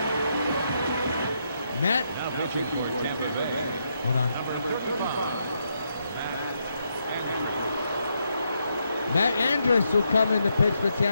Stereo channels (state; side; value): inverted; both; correlation -0.79